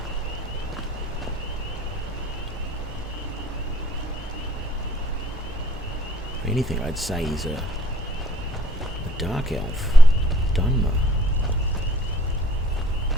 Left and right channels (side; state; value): both; normal; correlation 0.60